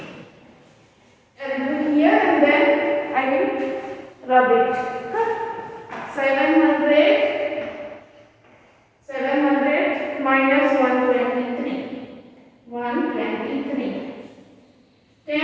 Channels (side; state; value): both; identical; correlation 1.00